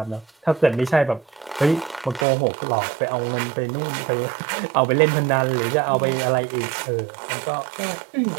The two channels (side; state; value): left; drops out; at 2.2 s